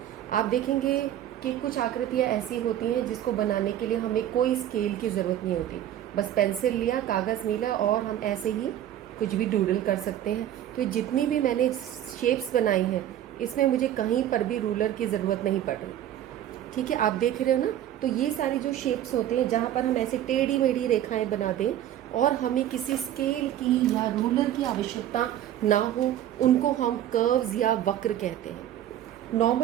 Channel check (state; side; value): quieter; left; 11.6 dB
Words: आप देखेंगे कि कुछ आकृतियाँ ऐसी होती हैं जिसको बनाने के लिए हमें कोई स्केल की ज़रूरत नहीं होती, बस पेंसिल लिया, कागज़ मिला और हम ऐसे ही कुछ भी डूडल कर सकते हैं। तो जितनी भी मैंने शेप्स बनाई हैं इसमें मुझे कहीं पर भी रूलर की ज़रूरत नहीं पड़ रही। ठीक है, आप देख रहे हो ना। तो ये सारी जो शेप्स होते हैं जहाँ पर हम ऐसे टेढ़ी मेढ़ी रेखाएं बना दें और हमें किसी स्केल की या रूलर की आवश्यकता ना हो, उनको हम कर्व्स या वक्र कहते हैं।